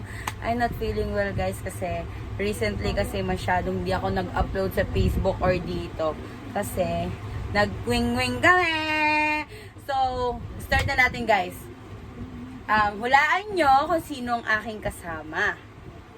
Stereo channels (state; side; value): identical; both; correlation 1.00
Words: I'm not feeling well guys kasi recently kasi masyadong di ako nag-upload sa Facebook or dito. Kasi nag-wing-wing kami! So, start na natin guys. Hulaan nyo kung sino ang aking kasama.